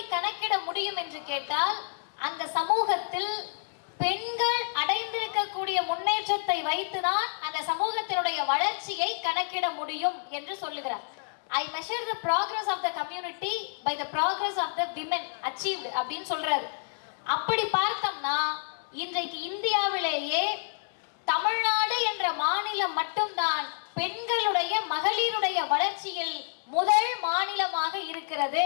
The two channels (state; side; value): silent; right; digital silence